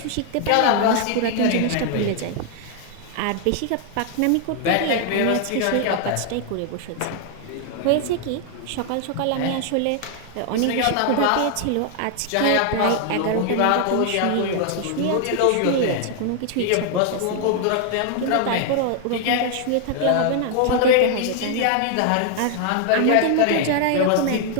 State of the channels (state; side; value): different; both; correlation 0.00